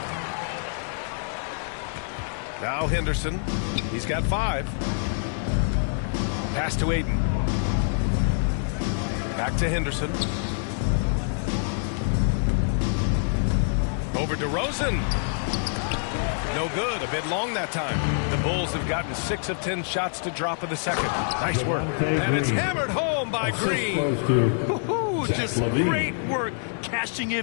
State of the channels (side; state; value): right; silent; digital silence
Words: Now Henderson. He's got 5. Pass to Ayton. Back to Henderson. Over to DeRozan. No good. A bit long that time. The Bulls have gotten 6 of 10 shots to drop in the second. Nice work. And it's hammered home by Green. Just great work cashing